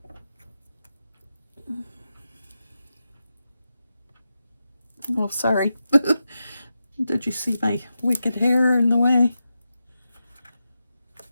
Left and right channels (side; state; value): both; inverted; correlation -0.90